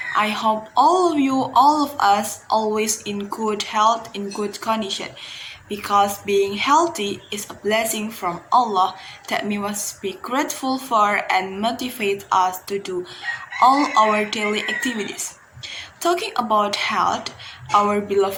I hope all of us, always in good health, in good condition, because being healthy is a blessing from Allah that we must be grateful for and motivate us to do all our daily activities. Talking about health, our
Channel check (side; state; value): both; identical; correlation 1.00